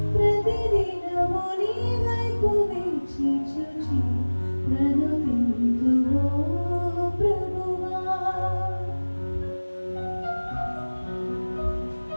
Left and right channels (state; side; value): inverted; both; correlation -1.00